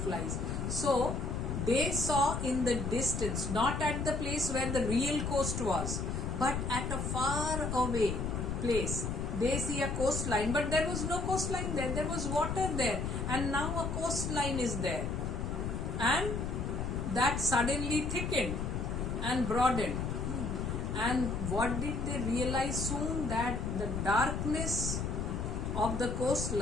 So they saw in the distance, not at the place where the real coast was, but at a far away place. They see a coastline, but there was no coastline there. There was water there, and now a coastline is there. And that suddenly thickened and broadened. And what did they realize soon? That the darkness of the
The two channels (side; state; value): left; noise; rumble, 2 dB below the sound